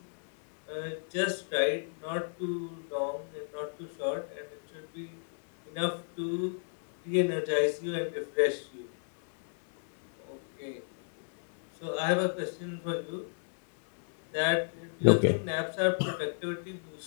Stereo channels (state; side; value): silent; right; digital silence